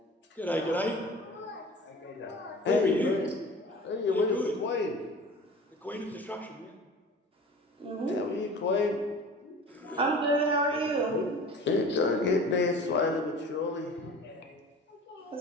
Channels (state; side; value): normal; both; correlation 0.40